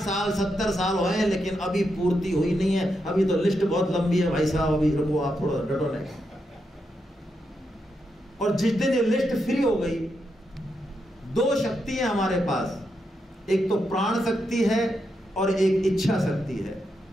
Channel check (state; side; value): normal; both; correlation 0.83